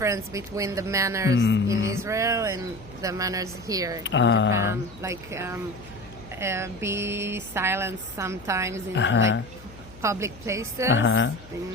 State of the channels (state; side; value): noise; left; hum, 20 dB below the sound